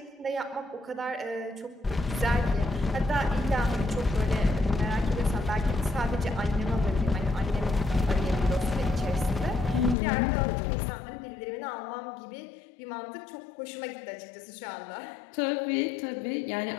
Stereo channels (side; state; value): right; drops out; at 10.0 s